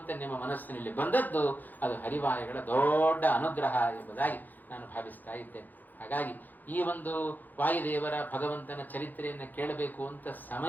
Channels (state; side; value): late; right; 0.085 ms